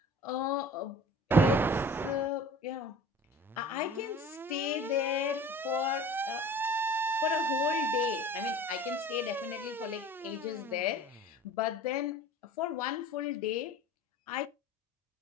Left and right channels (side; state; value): both; normal; correlation 0.44